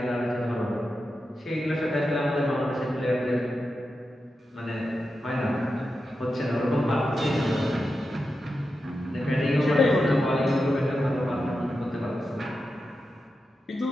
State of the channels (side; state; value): both; normal; correlation 0.90